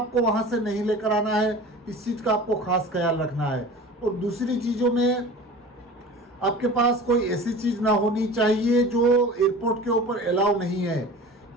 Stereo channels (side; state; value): both; normal; correlation 0.38